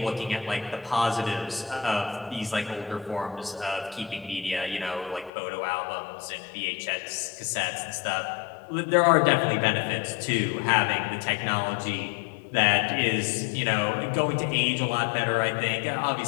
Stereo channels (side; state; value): right; drops out; at 5.3 s